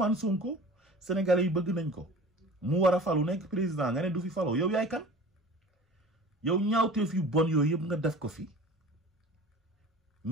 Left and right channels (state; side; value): normal; both; correlation 0.41